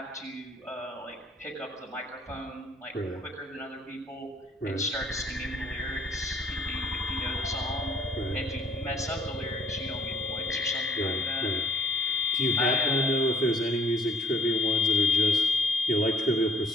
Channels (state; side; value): normal; both; correlation 0.61